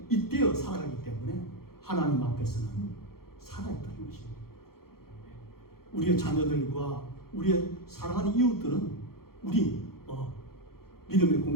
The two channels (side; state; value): right; late; 0.94 ms